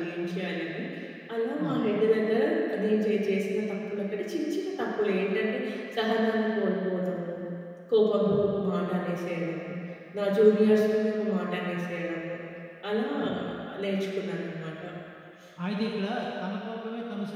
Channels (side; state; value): both; identical; correlation 1.00